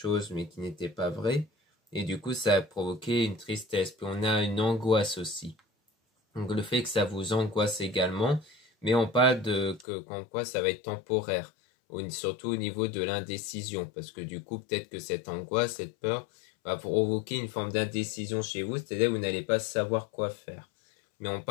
mais qui n'était pas vrai. Et du coup, ça a provoqué une tristesse. Puis on a une angoisse aussi. Donc le fait que ça vous angoisse également, mais on parle de qu'en quoi ça va être temporaire, surtout au niveau de l'indécision, parce que du coup, peut-être que cette angoisse, cette peur, va provoquer une forme d'indécision chez vous, c'est-à-dire que vous n'allez pas savoir quoi faire. Mais on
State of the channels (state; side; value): drops out; right; at 9.9 s